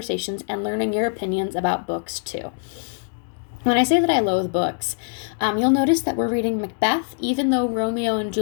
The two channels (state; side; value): silent; right; digital silence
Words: and learning your opinions about books too. When I say that I loathe books, you'll notice that we're reading Macbeth, even though Romeo and